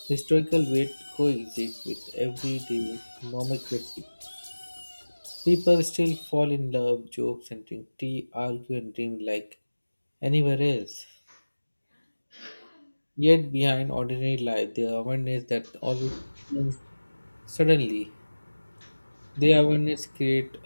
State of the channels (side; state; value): both; inverted; correlation -1.00